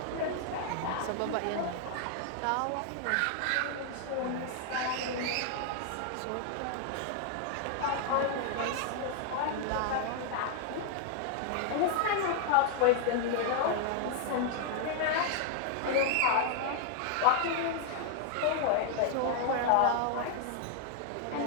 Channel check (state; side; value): different; both; correlation 0.00